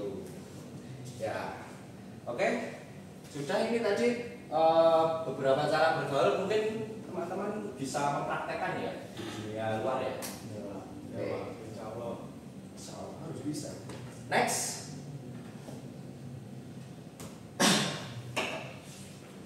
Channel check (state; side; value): identical; both; correlation 1.00